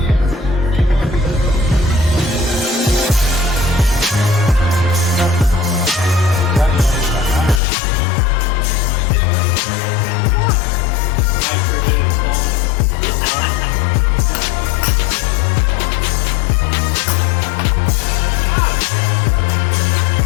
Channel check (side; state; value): right; drops out; at 7.6 s